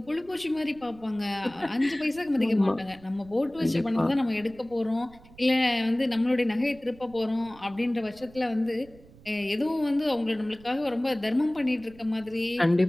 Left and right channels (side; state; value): right; noise; rumble, 23 dB below the sound